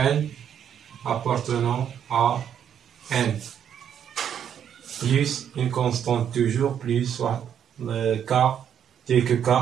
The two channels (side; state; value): left; quieter; 8.9 dB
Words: appartenant à n, plus une constante toujours, plus soit le k, tel que k